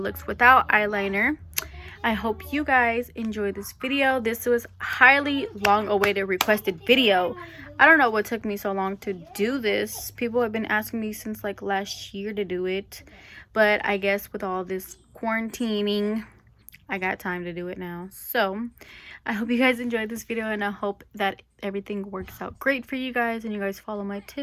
looks without eyeliner. I hope you guys enjoy this video. This was highly long awaited requested video. I don't know what took me so long to do this. People have been asking me since like last year to do it, but I guess with all this quarantining, I got time to do it now. So I hope you guys enjoyed this video, and I hope that everything works out great for you guys and you guys follow my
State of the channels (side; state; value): both; identical; correlation 1.00